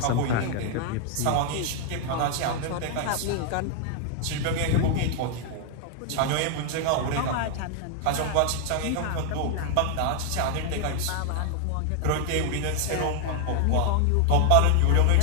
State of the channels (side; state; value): both; different; correlation 0.00